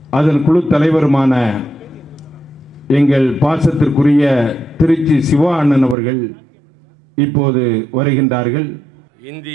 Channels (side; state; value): left; drops out; at 6.0 s